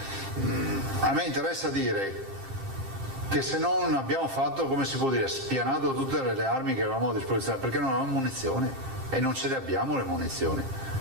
a me interessa dire che se non abbiamo fatto, come si può dire, spianato tutte le armi che avevamo a disposizione, perché non avevamo munizioni e non ce le abbiamo le munizioni.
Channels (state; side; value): late; left; 10 ms